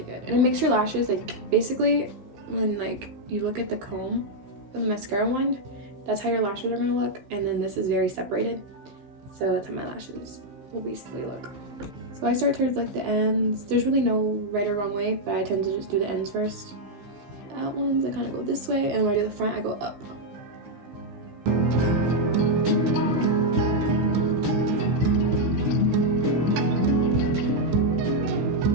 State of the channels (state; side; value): late; left; 15 ms